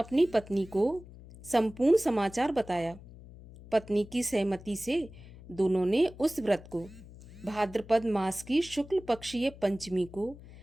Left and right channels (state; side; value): noise; left; hum, 18 dB below the sound